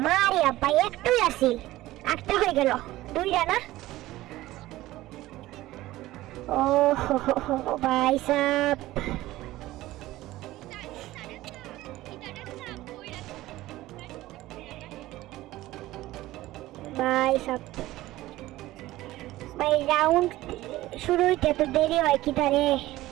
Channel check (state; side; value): quieter; left; 16.7 dB